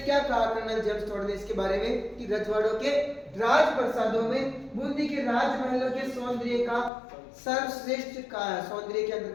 कहा कर्नल जेम्स टोड ने इसके बारे में कि रजवाड़ों के राज प्रसादों में बूंदी के राजमहलों के सौंदर्य का सर्वश्रेष्ठ कहा है। सौंदर्य के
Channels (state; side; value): drops out; right; at 6.9 s